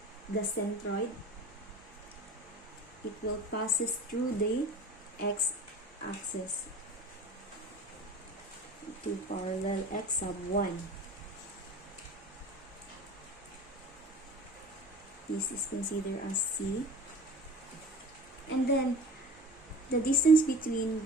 centroid. It will passes through the x-axis to parallel x sub 1. This is considered as C. And then the distance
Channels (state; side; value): normal; both; correlation 0.40